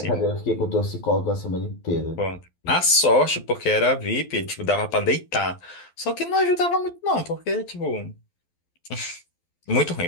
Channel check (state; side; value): late; right; 12 ms